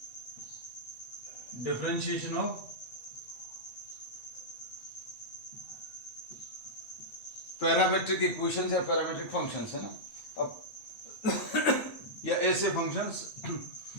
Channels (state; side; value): late; right; 8.6 ms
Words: differentiation of parametric equations या पैरामेट्रिक फंक्शंस है ना। अब या ऐसे फंक्शंस